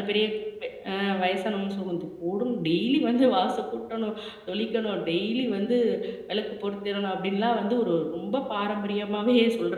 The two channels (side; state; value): both; identical; correlation 1.00